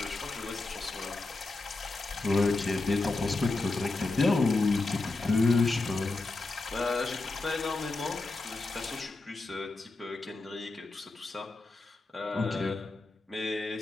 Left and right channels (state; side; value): quieter; right; 3.3 dB